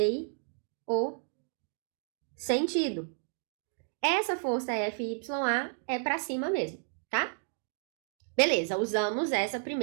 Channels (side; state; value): left; silent; 56 dB below the other